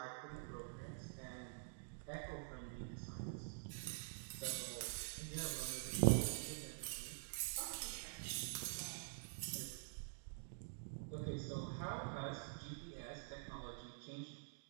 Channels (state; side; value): silent; left; digital silence